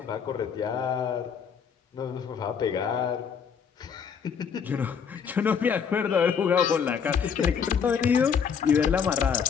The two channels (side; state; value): right; quieter; 6.8 dB